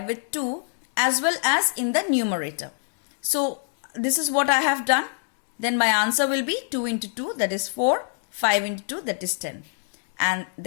with 2 as well as in the numerator. So this is what I have done. Then my answer will be 2 into 2, that is 4. 5 into 2, that is 10. And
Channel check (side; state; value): right; silent; digital silence